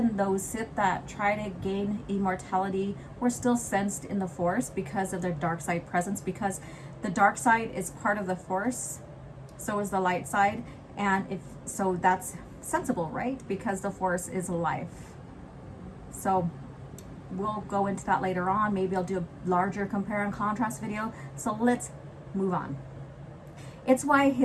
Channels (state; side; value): identical; both; correlation 1.00